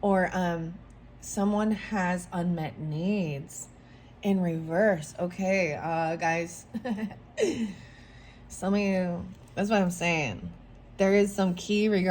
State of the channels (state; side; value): identical; both; correlation 1.00